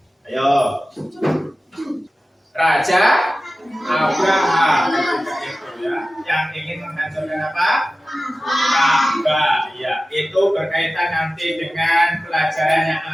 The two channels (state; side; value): normal; both; correlation 0.95